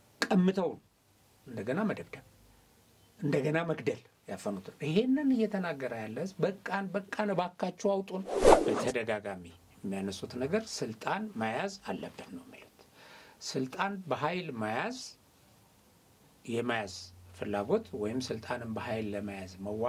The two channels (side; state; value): both; identical; correlation 1.00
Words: ቀምተው እንደገና መደብደብ እንደገና መግደል ያፈኑት። ይሄንን እየተናገረ ያለ በቃን ባካችሁ አውጡን። በተደጋጋሚ የሚያነሱት ነገር ስልጣን መያዝ አለብን ነው ማለት። ስልጣን በኃይል የመያዝ ፍላጎት ወይም ስልጣንን በኃይል ለመያዝ